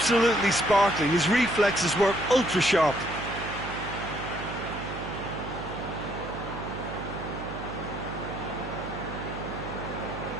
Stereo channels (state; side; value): noise; right; hum, 8 dB below the sound